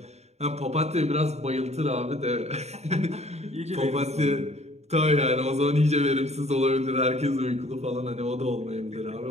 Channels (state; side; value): late; left; 0.32 ms